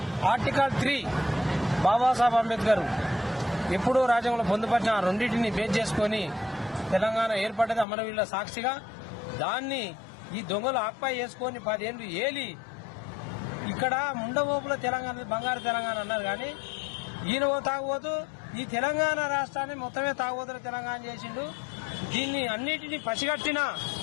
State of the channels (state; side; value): drops out; right; at 7.9 s